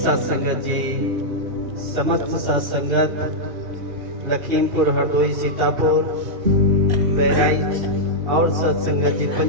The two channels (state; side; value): late; left; 2.4 ms